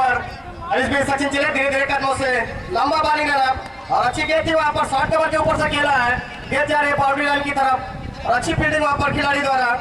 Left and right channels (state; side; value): identical; both; correlation 1.00